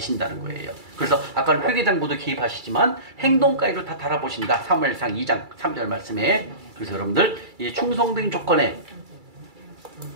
거예요. 그래서 아까 회개장부도 개입하시지만 행동까지도 다 달아보신다. 사무엘상 2장 3절 말씀에. 그래서 여러분들 이 충성된 조건에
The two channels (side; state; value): left; late; 2.3 ms